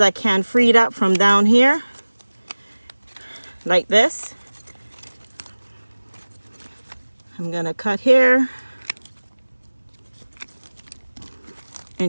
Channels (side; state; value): both; inverted; correlation -1.00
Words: I can freed up from down here, like this. I'm gonna cut here